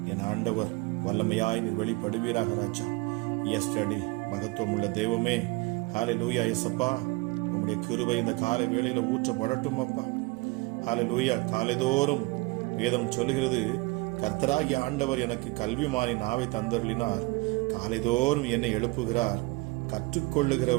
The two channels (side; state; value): left; quieter; 23.9 dB